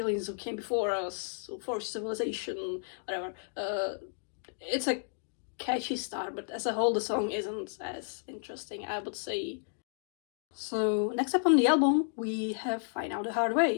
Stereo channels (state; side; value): silent; right; digital silence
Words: who came before us, for civilization, whatever. It's a catchy start, but as a whole, the song isn't as interesting, I would say. So next up on the album, we have Find Out the Hard